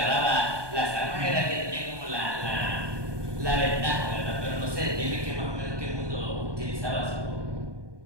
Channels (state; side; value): late; left; 1.2 ms